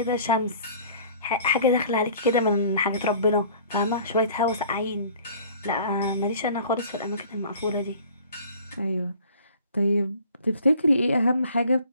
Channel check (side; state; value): both; inverted; correlation -0.49